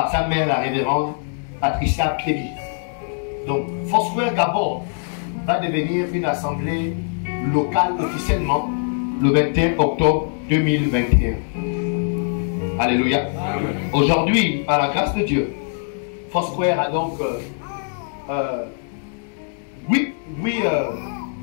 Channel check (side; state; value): right; silent; 63 dB below the other